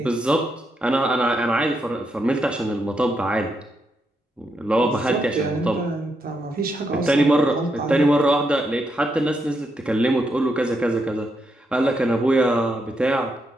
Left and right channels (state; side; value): normal; both; correlation 0.81